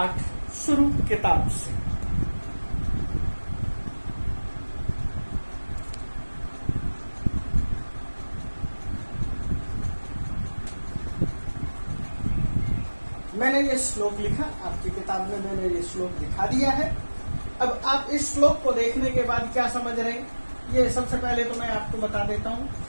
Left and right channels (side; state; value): both; inverted; correlation -1.00